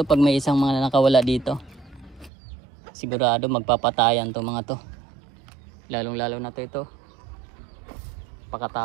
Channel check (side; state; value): left; drops out; at 2.3 s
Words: pag may isang mga nakawala dito. Sigurado magpapatayan to mga to. Lalong lalo na to ito.